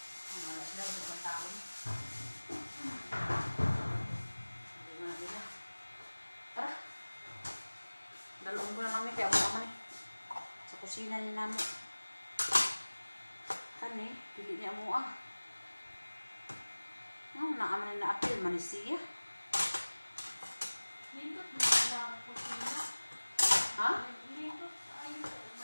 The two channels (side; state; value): both; inverted; correlation -1.00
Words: Ang alas na, sa pagtaon. Hindi mo na nila. Tara. Dalawang ko na namin, kaya mo naman eh. Sa kusina ni namo. Kani, pili niya mo ah. No, naaman na apil, manisiya. Lindot mo lang po sila. Ha? Lindot ay